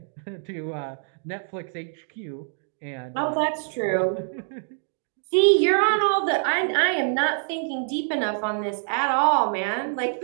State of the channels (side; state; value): left; silent; digital silence